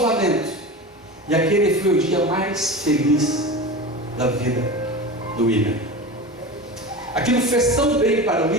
E aquele foi o dia mais feliz da vida do William. Aquilo fez tão bem para o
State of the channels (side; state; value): both; normal; correlation 0.29